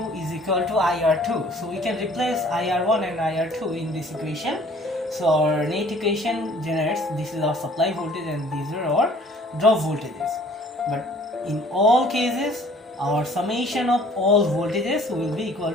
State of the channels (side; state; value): both; normal; correlation 0.55